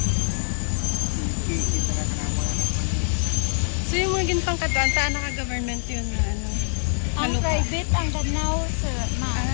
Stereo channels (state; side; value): silent; right; 62 dB below the other